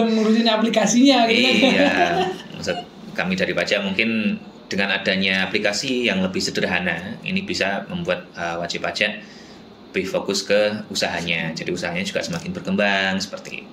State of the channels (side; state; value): both; identical; correlation 1.00